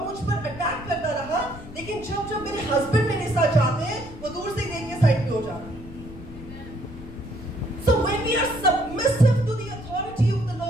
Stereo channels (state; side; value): noise; left; rumble, 14 dB below the sound